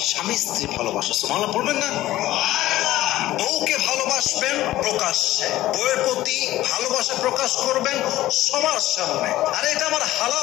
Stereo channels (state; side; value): quieter; right; 15.4 dB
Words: স্ত্রী ভালোবাসা, সুবহানাল্লাহ পড়বেন না? বউকে ভালোবাসবেন প্রকাশ্যে, বউয়ের প্রতি ভালোবাসা প্রকাশ করবেন সবার সামনে। আরে এটা আমার